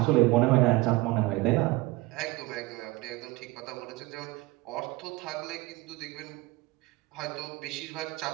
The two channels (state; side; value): quieter; left; 21.0 dB